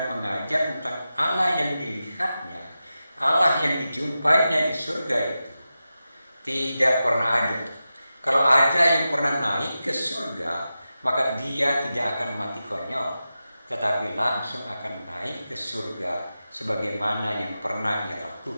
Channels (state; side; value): inverted; both; correlation -0.92